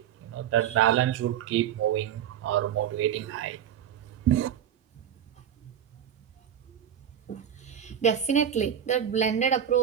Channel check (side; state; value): left; quieter; 9.7 dB